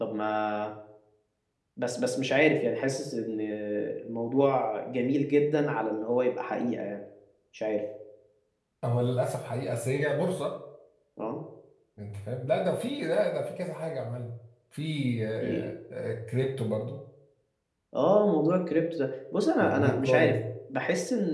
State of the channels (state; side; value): identical; both; correlation 1.00